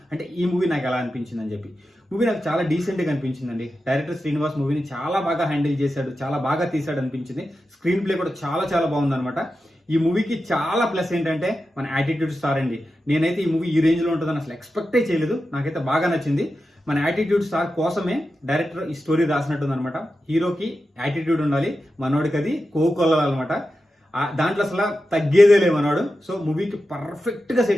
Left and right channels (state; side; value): normal; both; correlation 0.91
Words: అంటే ఈ మూవీ నాకు ఎలా అనిపించింది అని చెప్పి. మూవీ నాకు చాలా డీసెంట్గా అనిపించిందండి. డైరెక్టర్ శ్రీనివాస్ మూవీని చాలా బాగా హ్యాండిల్ చేశాడు, చాలా బాగా తీశాడు అనిపించింది. స్క్రీన్ ప్లే కూడా చాలా బాగుందన్నమాట. ఈ మూవీకి చాలా ప్లస్ ఏంటంటే మన యాటిట్యూడ్ స్టార్ అండి. నేనైతే ఈ మూవీ ఈ రేంజ్లో ఉంటుందని అసలు ఎక్స్పెక్టే చేయలేదు. నాకైతే బాగా నచ్చింది. మన యాటిట్యూడ్ స్టార్ కోసమే డైరెక్టర్ ఈ స్టోరీ రాసినట్టుందనమాట. హీరోకి యాటిట్యూడ్ ఉండాలి, మనోడికి అది కోకొల్లాలన్నమాట. దాంట్లో అసలు తగ్గేదే లేదు మనోడు. సో మూవీకి పర్ఫెక్ట్గా